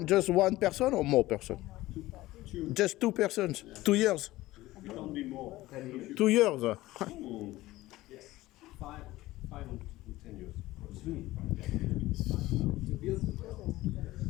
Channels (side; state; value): right; quieter; 17.4 dB